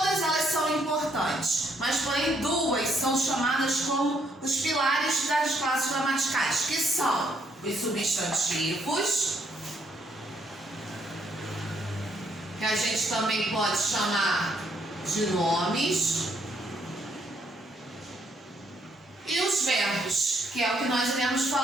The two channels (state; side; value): normal; both; correlation 0.71